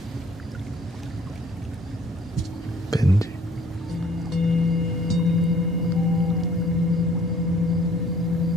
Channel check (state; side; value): normal; both; correlation 0.57